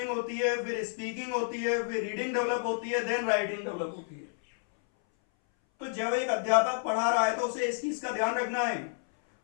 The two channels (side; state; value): right; silent; 58 dB below the other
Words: होती है, फिर स्पीकिंग होती है, फिर रीडिंग डेवलप होती है, देन राइटिंग डेवलप होती है। तो जब एक अध्यापक पढ़ा रहा है तो उसे इस चीज का ध्यान रखना है,